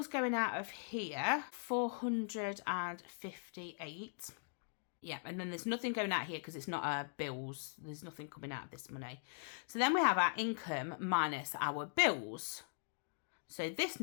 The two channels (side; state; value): right; silent; digital silence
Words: going out of here 458. Yeah, and then there's nothing going out here because it's not our bills. There's nothing coming out of this money. So then we have our income minus our bills. So this